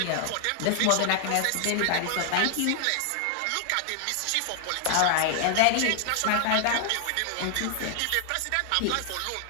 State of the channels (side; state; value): both; different; correlation 0.00